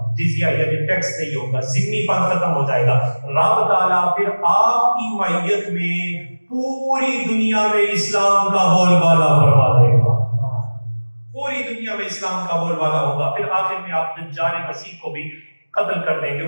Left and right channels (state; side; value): inverted; both; correlation -1.00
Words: جزیہ یعنی ٹیکس نہیں ہوگا، ذمہ پن ختم ہو جائے گا. رب تعالیٰ پھر آپ کی معیت میں پوری دنیا میں اسلام کا بول بالا فرما دے گا. پوری دنیا میں اسلام کا بول بالا ہوگا. پھر آخر میں آپ دجال مسیح کو بھی قتل کر دیں گے،